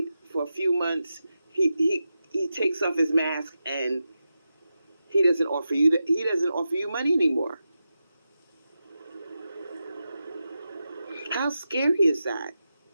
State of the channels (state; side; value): inverted; both; correlation -0.90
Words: for a few months, he takes off his mask and he doesn't offer you money anymore. How scary is that?